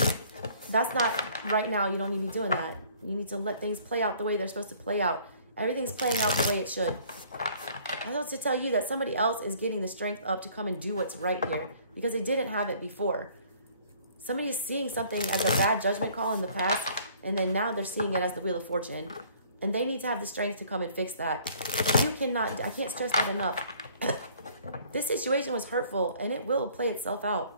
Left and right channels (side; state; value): both; inverted; correlation -0.57